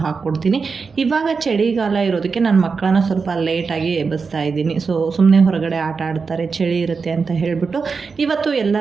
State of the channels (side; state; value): left; quieter; 5.0 dB